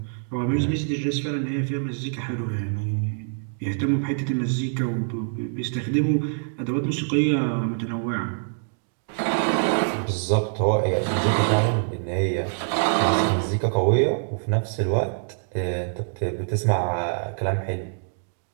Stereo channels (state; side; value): silent; left; digital silence